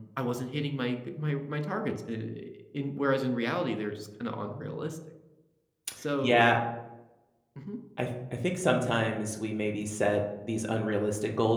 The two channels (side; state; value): both; identical; correlation 1.00